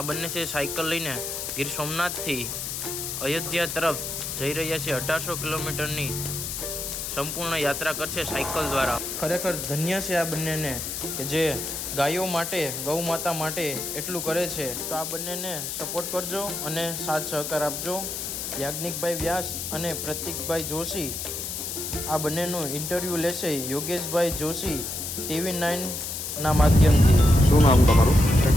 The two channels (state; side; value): noise; left; hiss, 5 dB below the sound